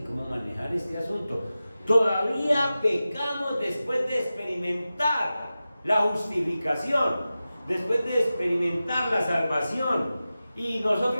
cómo manejar este asunto. Todavía pecamos después de experimentar la justificación, después de experimentar la salvación. Y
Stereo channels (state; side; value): inverted; both; correlation -0.94